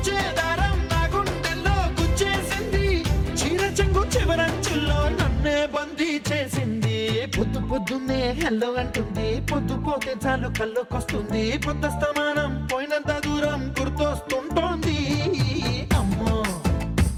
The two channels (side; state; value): both; identical; correlation 1.00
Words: దారం నా గుండెల్లో గుచ్చేసింది, చీర చెంగు చివరంచుల్లో నన్నే బందీ చేసింది. పొద్దు పొద్దున్నే హెల్లో అంటుంది, పొద్దు పోతే చాలు కళ్ళొకొస్తుంది, పొద్దస్తమానం పోయినంత దూరం గుర్తొస్తుంటోంది. అమ్మో